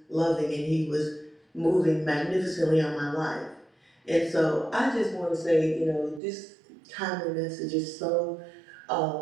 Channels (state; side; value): drops out; left; at 6.2 s